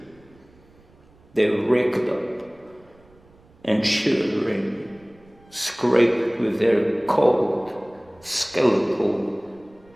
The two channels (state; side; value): noise; right; rumble, 29 dB below the sound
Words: They raked up and, shuddering, scraped with their cold, skeletal